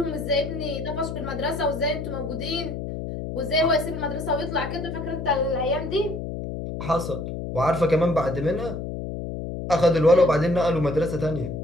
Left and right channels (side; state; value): left; noise; hum, 6 dB below the sound